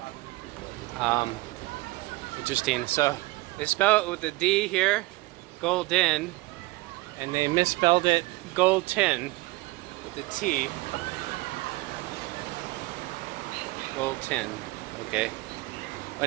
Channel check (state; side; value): quieter; left; 21.2 dB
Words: Interesting. So they spell it with a D here, Golden, and they misspelled it Gold-tin with a T. Gold-tin. Okay.